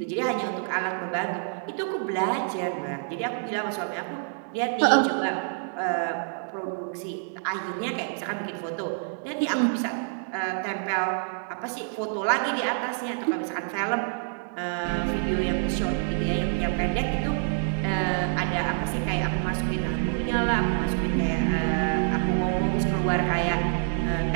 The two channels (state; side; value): silent; left; digital silence